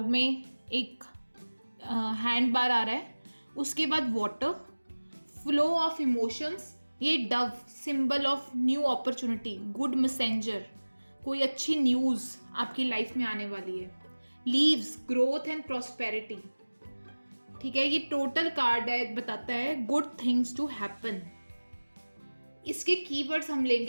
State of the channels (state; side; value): inverted; both; correlation -1.00